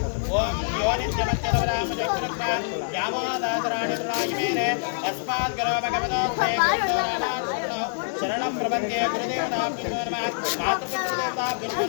ಓಂ ಯೋ ನಿತ್ಯಮತ್ಯದವರಾಮಜಗ್ರಕ್ಮ ವ್ಯಾಮೋದಾತರಾಣಿ ದುರಾಯಿಮೇನೆ ಅಸ್ಮಾತ್ ಗುರೋ ಭಗವತೋಸ್ತೆ ಗುರುಂದೋ ರಾಮಾನುಷಣೋ ಶರಣಂ ಪ್ರಪದ್ಯೆ. ಗುರುದೇವತಾಭ್ಯೋ ನಮಃ ಮಾತೃಪಿತೃದೇವತಾಭ್ಯೋ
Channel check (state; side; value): silent; right; 61 dB below the other